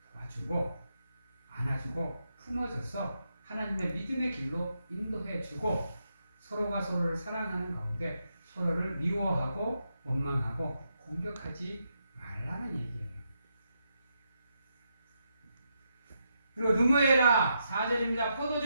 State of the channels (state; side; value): inverted; both; correlation -0.82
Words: 도와주고 안아주고 품어줘서 하나님의 믿음의 길로 인도해주고 서로가 서로를 사랑하는 가운데 서로를 미워하고 원망하고 공격하지 말라는 얘기예요. 그리고 누무해라 4절입니다.